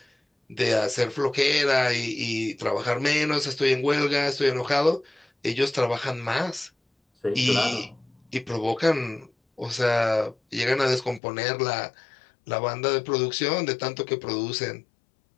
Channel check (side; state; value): right; drops out; at 11.2 s